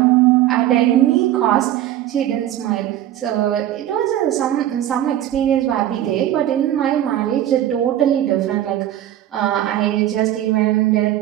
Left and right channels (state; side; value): quieter; left; 12.5 dB